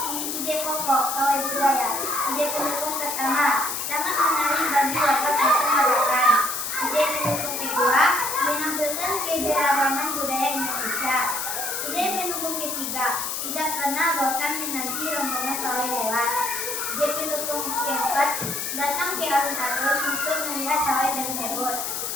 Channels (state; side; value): noise; left; hiss, 3 dB below the sound